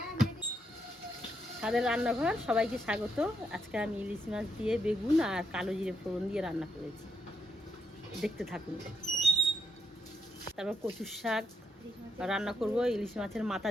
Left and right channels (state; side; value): normal; both; correlation 0.79